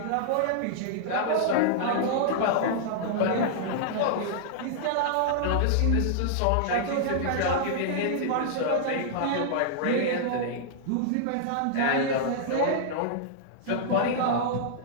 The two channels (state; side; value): different; both; correlation -0.01